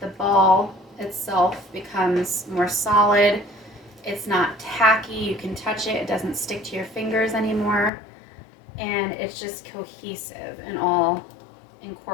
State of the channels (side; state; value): right; drops out; at 7.9 s